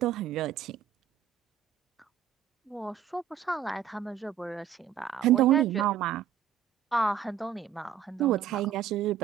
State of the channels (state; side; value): quieter; left; 8.9 dB